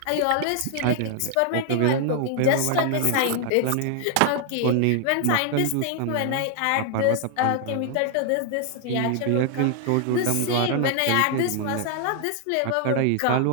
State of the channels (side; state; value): both; different; correlation 0.00